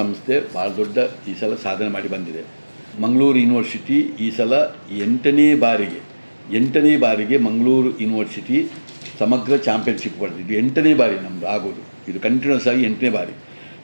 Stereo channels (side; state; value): both; inverted; correlation -1.00